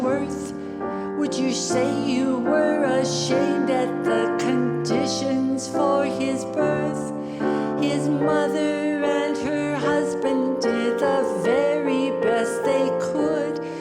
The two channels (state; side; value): identical; both; correlation 1.00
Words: earth? Would you say you were ashamed at the conditions for his birth? His mother and her husband did the very best they could.